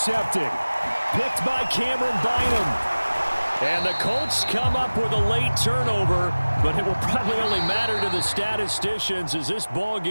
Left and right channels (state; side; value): inverted; both; correlation -1.00